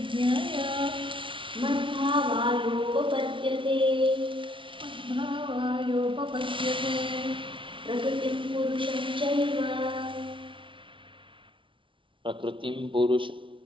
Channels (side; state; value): left; late; 0.25 ms